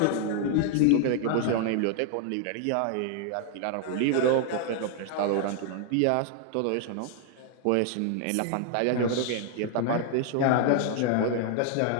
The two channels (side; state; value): both; different; correlation 0.00